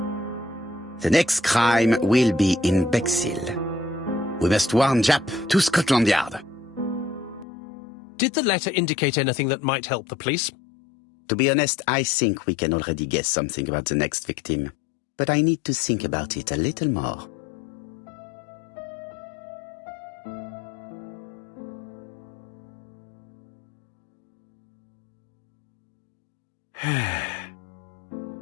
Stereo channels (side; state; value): right; drops out; at 7.5 s